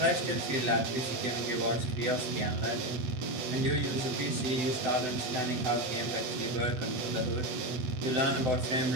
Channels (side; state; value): left; late; 8.0 ms